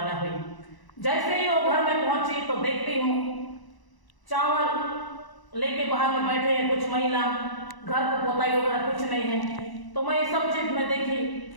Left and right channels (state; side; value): late; right; 1.0 ms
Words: हुई। जैसे ही वो घर में पहुंची तो देखती हूँ चावल लेके बाहर में बैठे हैं कुछ महिला, घर को पोताई वगैरह कुछ नहीं है। तो मैं ये सब चीज में देखी